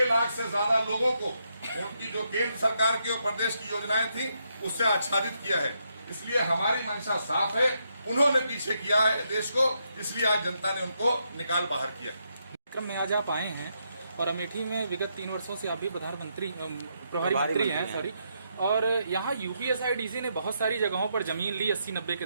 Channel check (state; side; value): inverted; both; correlation -0.79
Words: लाख से ज्यादा लोगों को उनकी जो केंद्र सरकार की और प्रदेश की योजनाएं थी उससे आच्छादित किया है। इसलिए हमारी मंशा साफ है। उन्होंने पीछे किया है देश को, इसलिए आज जनता ने उनको निकाल बाहर किया। क्रम में आज आप आए हैं और अमेठी में विगत 3 वर्षों से आप भी प्रभारी मंत्री हैं, सॉरी। और यहाँ यूपीएसआईडीसी ने बहुत सारी जगहों पर जमीन ली 80-90 के